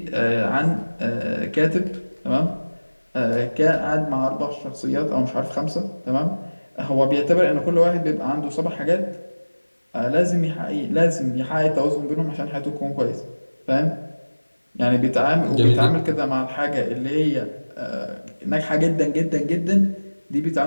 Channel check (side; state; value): both; inverted; correlation -1.00